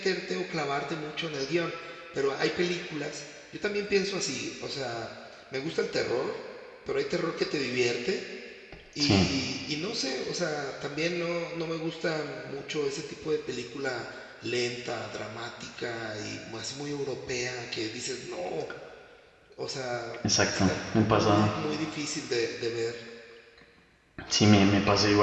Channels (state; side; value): identical; both; correlation 1.00